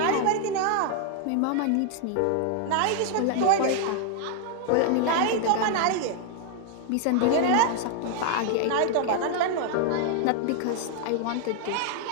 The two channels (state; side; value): different; both; correlation 0.00